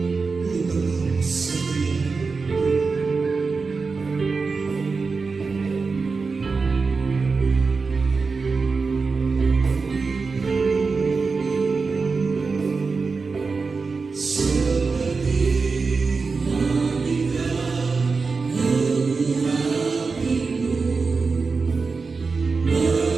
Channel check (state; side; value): quieter; left; 4.5 dB